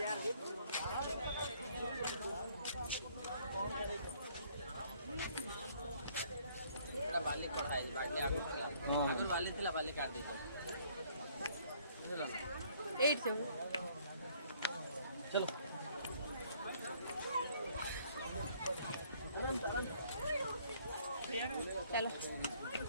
बाली पड़ा है बाली आगे अगर बाली थी बाली काट दीजिए चलो 8 से चलो चलो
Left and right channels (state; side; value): inverted; both; correlation -0.62